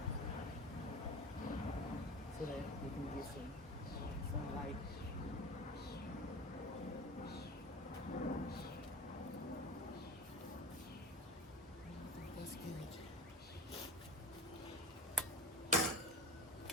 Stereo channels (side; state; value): both; normal; correlation 0.32